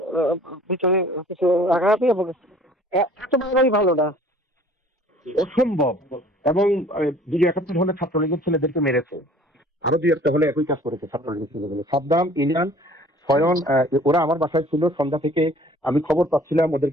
ভিতরে কিছু রাখারাখি এবং এত বাড়াই ভালো না, অসম্ভব। এবং 271 হলে ছাত্রলীগের ছেলেদেরকে মেরেছে, আরো 2-1টা হলে একই কাজ করেছে ছাত্রলীগের ছেলেগুলো। সাদ্দাম, ইলিয়ান, স্বয়ন, ওরা আমার বাসায় ছিল সন্ধ্যা থেকে। আমি খবর পাচ্ছিলাম,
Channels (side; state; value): both; normal; correlation 0.51